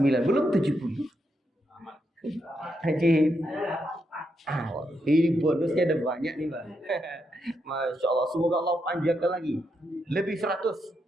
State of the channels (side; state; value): both; normal; correlation 0.82